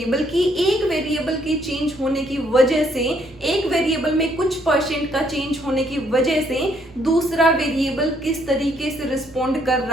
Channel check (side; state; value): both; normal; correlation 0.69